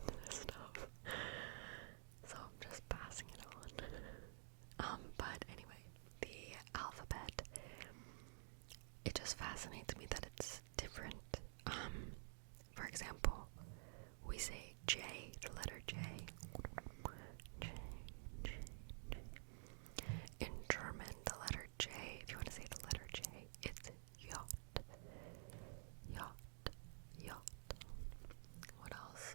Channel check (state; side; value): silent; left; digital silence